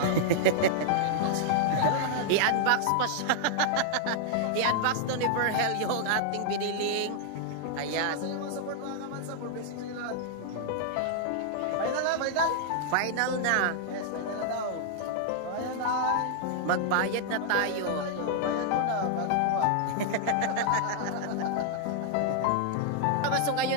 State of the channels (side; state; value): both; different; correlation -0.01